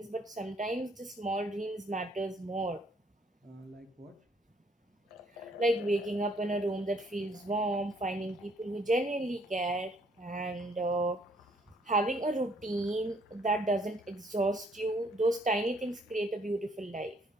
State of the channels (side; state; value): both; normal; correlation 0.65